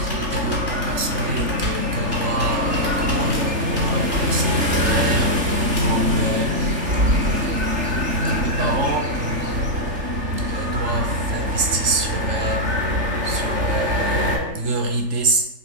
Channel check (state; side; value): late; left; 3.7 ms